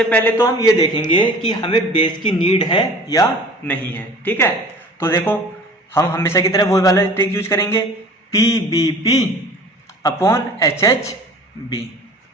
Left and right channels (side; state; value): both; normal; correlation 0.45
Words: पहले तो हम ये देखेंगे कि हमें बेस की नीड है या नहीं है। ठीक है, तो देखो हम हमेशा की तरह वही वाला ट्रिक यूज करेंगे, PBP अपॉन HHB।